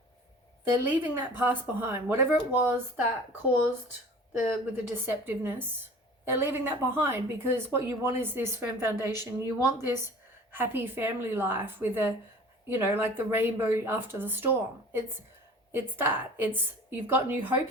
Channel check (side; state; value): both; normal; correlation 0.44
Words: they're leaving that past behind. Whatever it was that caused with the deceptiveness, they're leaving that behind, because what you want is this firm foundation. You want this happy family life with a, you know, like the rainbow after the storm. It's that. It's, you've got new hope